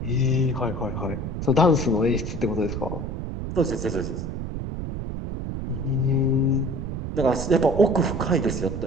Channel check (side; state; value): right; noise; rumble, 5 dB below the sound